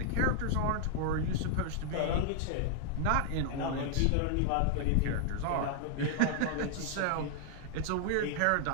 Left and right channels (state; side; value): different; both; correlation 0.00